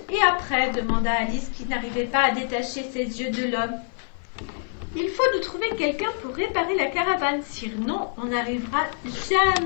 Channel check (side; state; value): right; silent; 62 dB below the other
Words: et après, demanda Alice qui n'arrivait pas à détacher ses yeux de l'homme. Il faut nous trouver quelqu'un pour réparer la caravane, sinon on n'arrivera